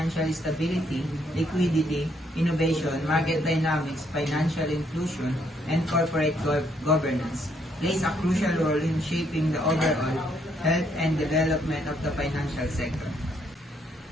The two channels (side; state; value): both; normal; correlation 0.71